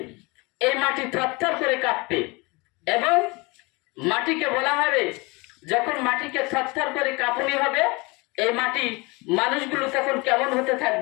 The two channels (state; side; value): quieter; right; 26.1 dB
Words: এই মাটি থরথর করে কাঁপবে। এবং মাটিকে বলা হবে, যখন মাটিকে থরথর করে কাঁপুনি হবে, এই মাটি মানুষগুলো তখন কেমন হতে